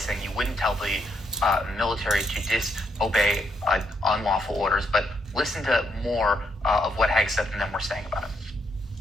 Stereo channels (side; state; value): both; normal; correlation 0.76